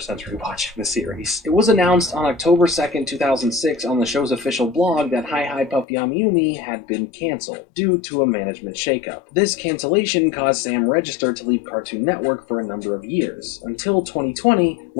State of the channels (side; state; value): right; drops out; at 5.9 s